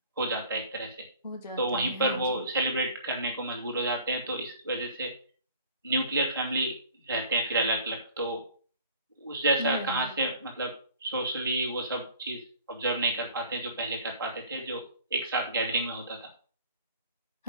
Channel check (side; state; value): both; inverted; correlation -0.49